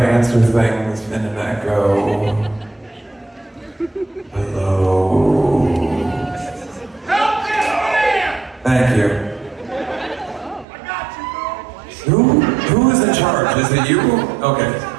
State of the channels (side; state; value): left; drops out; at 10.7 s